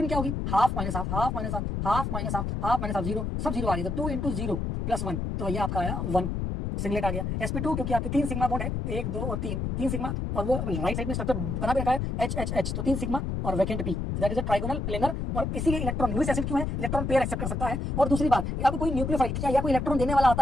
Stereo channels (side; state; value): left; noise; rumble, 2 dB below the sound